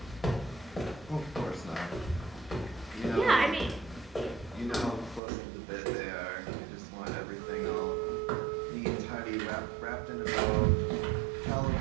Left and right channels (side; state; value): left; drops out; at 5.2 s